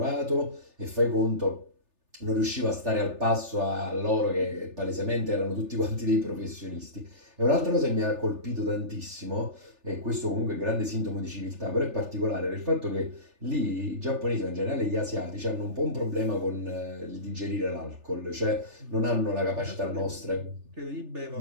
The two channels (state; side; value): late; left; 3.4 ms